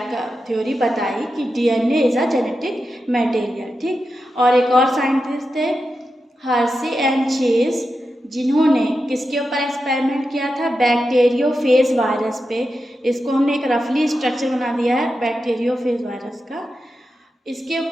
बताई कि DNA is a genetic material, ठीक। और एक और साइंटिस्ट थे हर्सी एंड चेज, जिन्होंने किसके ऊपर एक्सपेरिमेंट किया था, बैक्टीरियोफेज वायरस पे। इसको हमने एक रफली स्ट्रक्चर बना दिया है बैक्टीरियोफेज वायरस का। इसके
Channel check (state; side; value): normal; both; correlation 0.89